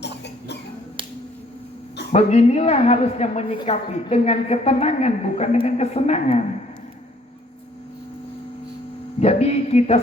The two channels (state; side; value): normal; both; correlation 0.61